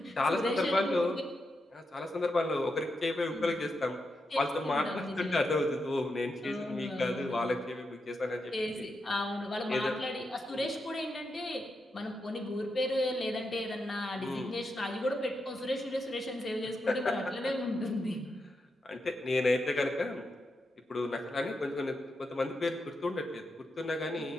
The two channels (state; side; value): normal; both; correlation 0.85